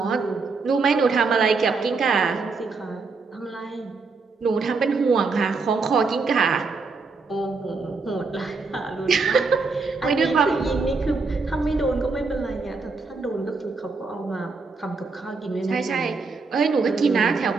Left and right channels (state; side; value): quieter; left; 4.3 dB